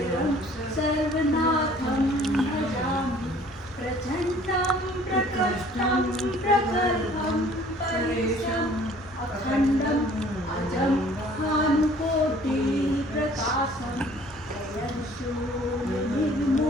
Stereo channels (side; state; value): both; normal; correlation 0.54